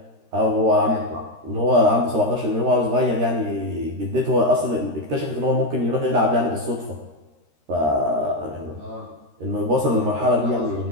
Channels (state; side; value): late; left; 13 ms